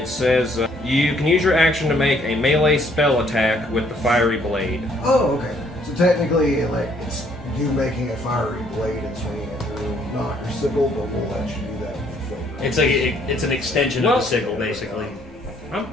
says you can use your action to make a melee spell attack with the fiery blade. Oh, okay. So technically, like, it's you making a fiery blade and swinging it through, not your sickle, but we'll let you do that with the flame. It's like it's an extension of the sickle, basically. I'm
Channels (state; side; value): normal; both; correlation 0.65